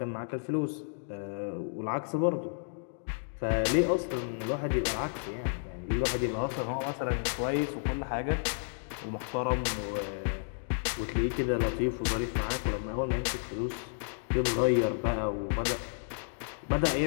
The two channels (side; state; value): right; silent; digital silence